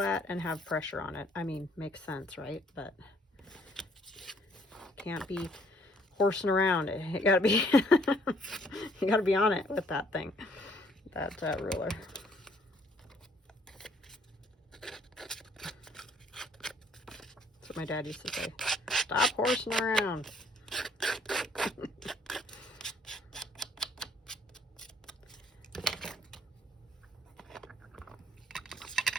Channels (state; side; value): normal; both; correlation 0.63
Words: and have pressure on it. I mean, makes sense, right? But can't be horsing around. It gotta be, you gotta be on it with that thing, that ruler. That's what my dad used to say. Stop horsing around.